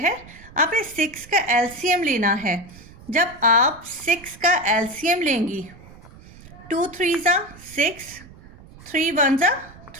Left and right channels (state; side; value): noise; right; rumble, 21 dB below the sound